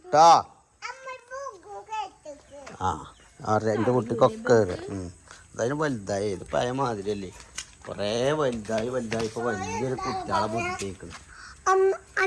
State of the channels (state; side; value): identical; both; correlation 1.00